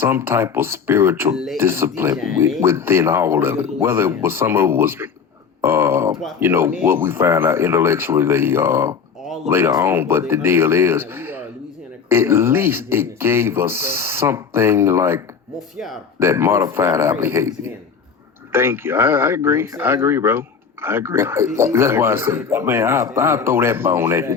type of spiritual discipline within all of it. Whether it was some of it was, what we found out intellectually later on. But the deal is, at least it gave us something like that modified our behavior. Thank you. I agree. I agree, bro. I agree. That's why I said, man, I'll throw that bone at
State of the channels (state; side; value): quieter; right; 6.1 dB